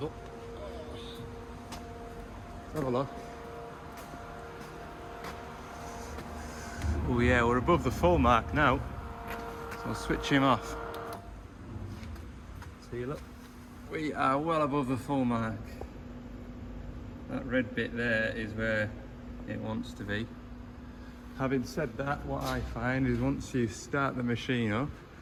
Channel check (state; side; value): identical; both; correlation 1.00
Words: Let's have a look. Oh yeah, we're above the full mark now, so I'll switch him off. See, look, we are well above the full mark. That red bit there is where it wants to be. Having said that, what I find is once you start the machine up,